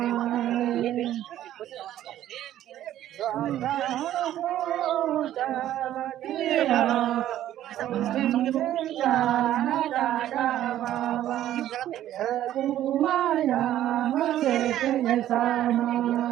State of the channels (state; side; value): quieter; left; 12.5 dB